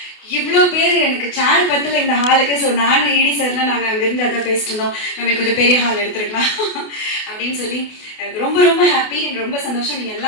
இவ்வளோ பேர் எனக்கு சேர் பத்தில் இந்த ஹாலுக்கு. ஸோ நானும் இடி சார்லாம் நாங்கள் அங்கேருந்து அதான் பேசிட்டு இருந்தோம், நம்ம கொஞ்சம் பெரிய ஹால் எடுத்துருக்கலாம் அப்படின்னு சொல்லி ரொம்ப ரொம்ப ஹாப்பி, எனக்கு ரொம்ப சந்தோஷம். நீங்கள்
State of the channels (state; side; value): late; right; 28 ms